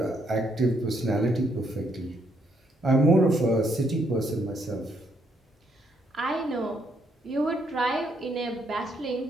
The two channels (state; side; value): normal; both; correlation 0.73